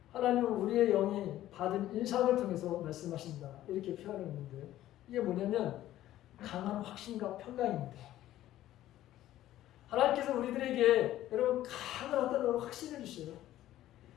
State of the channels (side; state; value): right; quieter; 13.8 dB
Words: 하나님은 우리의 영이 받은 인상을 통해서 말씀하신다. 이렇게 표현했는데 이게 뭐냐면 강한 확신과 평강입니다. 하나님께서 우리들에게 여러분 하늘 어떤 확신을 주셔요.